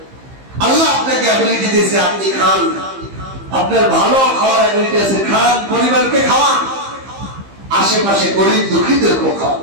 আল্লাহ আপনাকে অ্যাবিলিটি দিয়েছে, আপনি খান, আপনার ভালো খাওয়ার অ্যাবিলিটি আছে, খান, পরিবারকে খাওয়ান, আশেপাশে গরিব দুঃখীদেরকে খাওয়ান।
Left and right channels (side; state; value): left; late; 15 ms